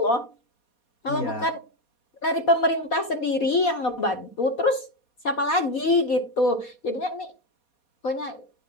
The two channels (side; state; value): right; late; 4.2 ms